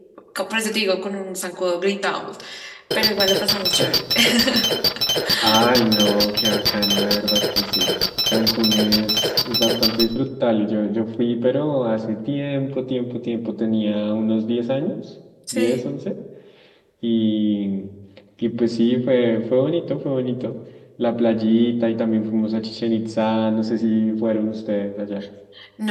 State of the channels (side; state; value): both; identical; correlation 1.00